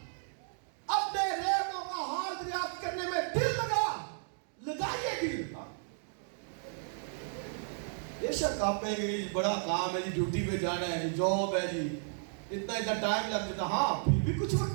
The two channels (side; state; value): left; silent; digital silence